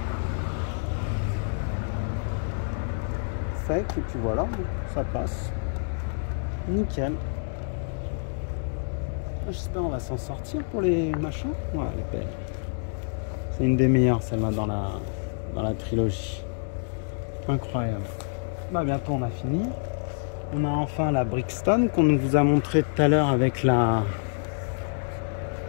secs et puis voilà, ça passe. Nickel. J'espère qu'on va s'en sortir pour les machins. Ouais, elle est belle. C'est une des meilleures, celle-là, dans la trilogie. Incroyable. Bah, bientôt, on a fini. On a enfin la Brixton qu'on vous a montré tout à l'heure avec la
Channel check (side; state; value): right; silent; digital silence